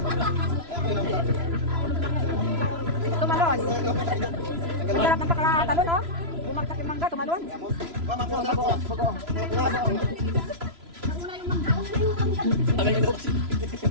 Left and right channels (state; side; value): late; left; 3.0 ms